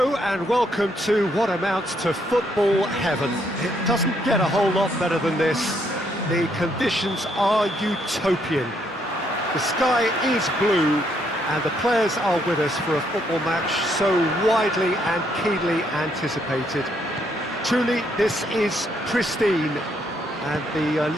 and welcome to what amounts to football heaven. It doesn't get a whole lot better than this. The conditions are utopian. The sky is blue and the players are with us for a football match so widely and keenly anticipated. Truly, this is pristine, and the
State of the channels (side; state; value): both; normal; correlation 0.72